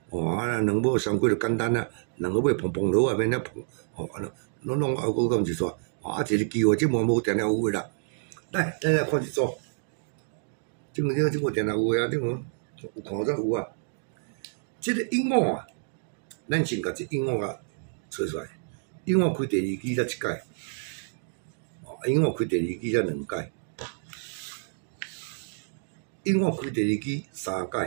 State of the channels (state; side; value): silent; left; digital silence